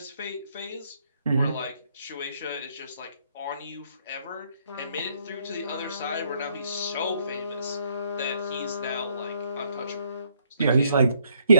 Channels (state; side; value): inverted; both; correlation -0.69